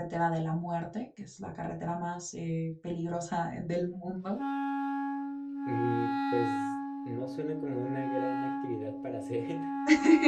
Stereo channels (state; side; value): identical; both; correlation 1.00